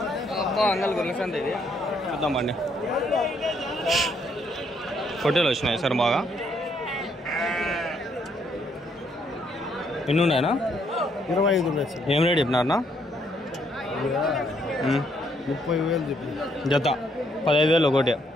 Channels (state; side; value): normal; both; correlation 0.71